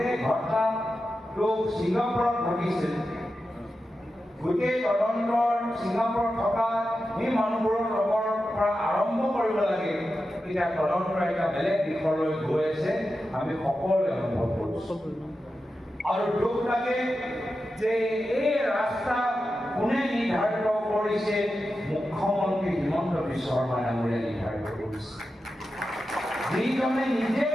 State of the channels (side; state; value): both; normal; correlation 0.91